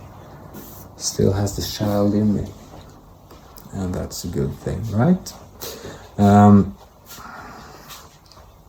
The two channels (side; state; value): both; identical; correlation 1.00